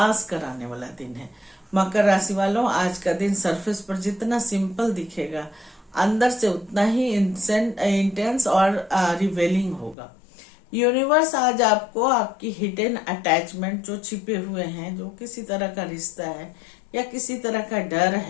कराने वाला दिन है। मकर राशि वालों, आज का दिन सरफेस पर जितना सिंपल दिखेगा अंदर से उतना ही इंटेंस और रिवेलिंग होगा। यूनिवर्स आज आपको आपकी हिडन अटैचमेंट जो छिपे हुए हैं, जो किसी तरह का रिश्ता है या किसी तरह का डर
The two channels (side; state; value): right; drops out; at 10.0 s